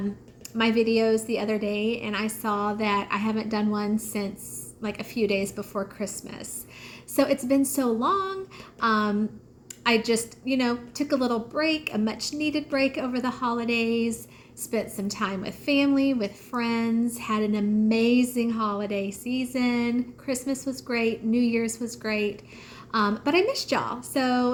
videos the other day and I saw that I haven't done one since like a few days before Christmas. So it's been so long. I just, took a little break, a much needed break over the holidays, spent some time with family, with friends, had an amazing holiday season. Christmas was great. New Year's was great. But I missed y'all.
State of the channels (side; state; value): both; identical; correlation 1.00